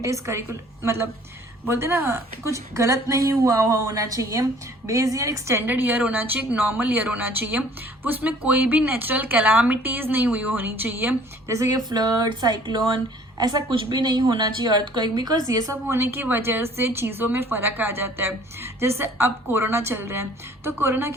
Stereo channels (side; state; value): both; normal; correlation 0.54